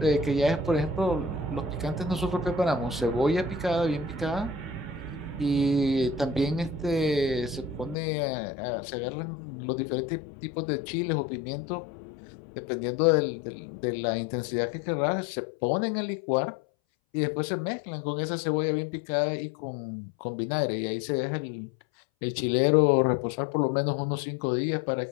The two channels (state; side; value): drops out; right; at 8.0 s